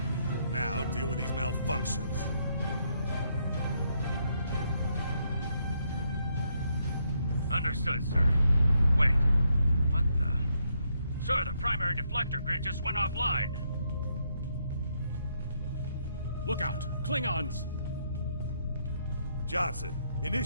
Now deal with these malfunctions. Understood, sir. Wait. What the... Sir, the primary deflector grid just went offline. Look out! Klingons! Johnson,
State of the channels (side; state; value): both; inverted; correlation -0.76